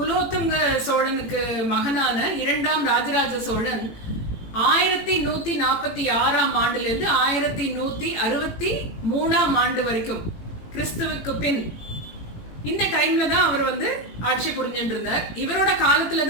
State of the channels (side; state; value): right; late; 18 ms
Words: சோழனுக்கு மகனான 2ஆம் ராஜராஜ சோழன் 1146ஆம் ஆண்டுல இருந்து 1163ஆம் ஆண்டு வரைக்கும் கிறிஸ்துவுக்கு பின் இந்த டைம்ல தான் அவர் ஆட்சி புரிஞ்சுட்டு இருந்தார். இவரோட காலத்துல